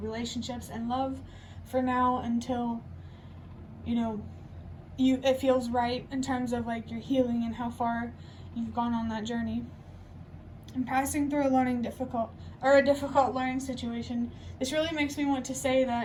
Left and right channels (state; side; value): identical; both; correlation 1.00